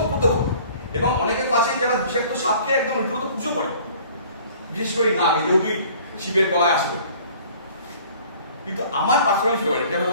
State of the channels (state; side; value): inverted; both; correlation -0.51